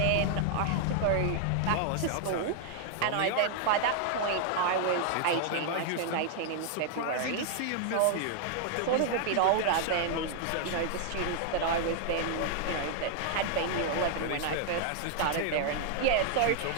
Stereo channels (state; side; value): different; both; correlation 0.00